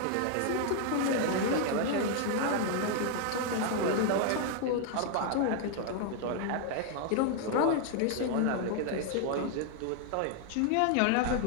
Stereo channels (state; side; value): different; both; correlation 0.00